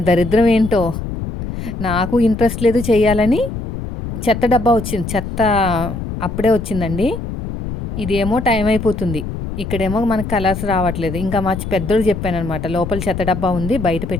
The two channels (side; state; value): left; noise; rumble, 6 dB below the sound